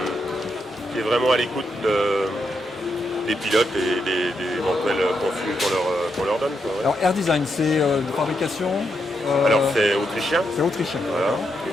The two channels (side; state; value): both; normal; correlation 0.82